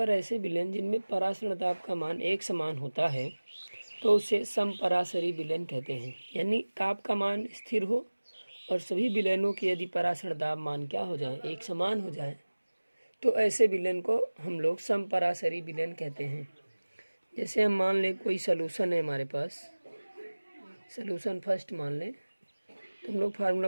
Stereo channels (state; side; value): inverted; both; correlation -1.00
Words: ऐसे विलयन जिनमें परासरण ताप का मान एक समान होता है तो उसे समपरासरी विलयन कहते हैं। यानी ताप का मान स्थिर हो और सभी विलयनों के यदि परासरण ताप मान क्या हो जाए, एक समान हो जाए, तो ऐसे विलयन को हम लोग समपरासरी विलयन कहते हैं। जैसे हम मान लें कोई सलूशन है हमारे पास, सलूशन फर्स्ट मान लें, तो हम लोग फार्मूला